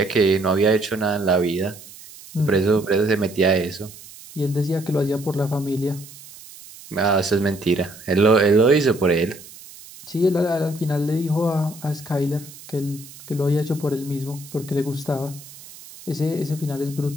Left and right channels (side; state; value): right; noise; hiss, 18 dB below the sound